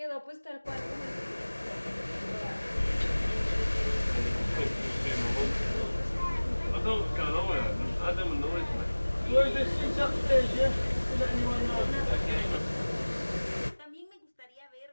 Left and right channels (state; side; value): inverted; both; correlation -1.00